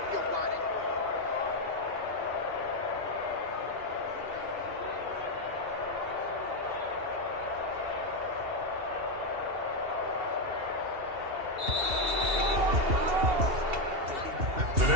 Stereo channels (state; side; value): late; left; 2.7 ms